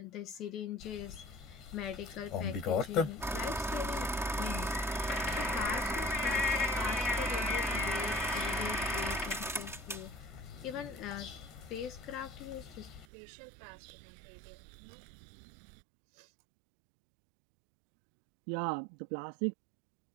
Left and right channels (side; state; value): left; drops out; at 13.1 s